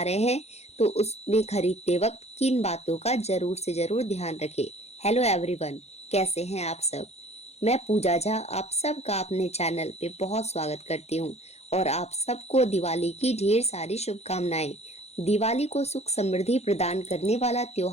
रहे हैं तो उसमें खरीदते वक्त किन बातों का जरूर से जरूर ध्यान रखें। हेलो एवरीवन, कैसे हैं आप सब। मैं पूजा झा आप सबका अपने चैनल पे बहुत स्वागत करती हूँ और आप सबको दिवाली की ढेर सारी शुभकामनाएं। दिवाली को सुख समृद्धि प्रदान करने वाला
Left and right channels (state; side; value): late; right; 0.31 ms